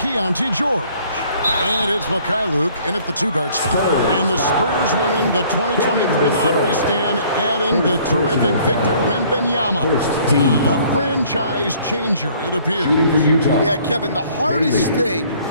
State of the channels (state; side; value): inverted; both; correlation -0.58